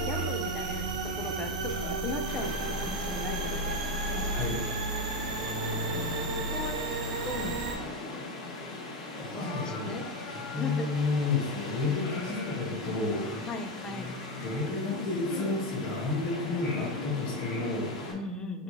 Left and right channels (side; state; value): both; normal; correlation 0.12